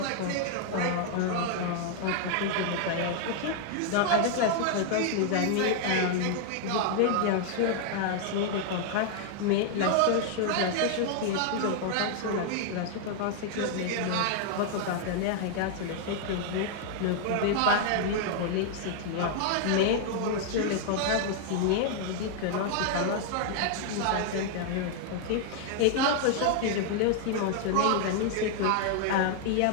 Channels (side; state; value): both; different; correlation 0.00